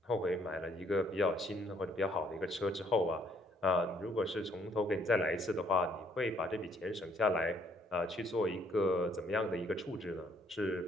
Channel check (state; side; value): normal; both; correlation 0.66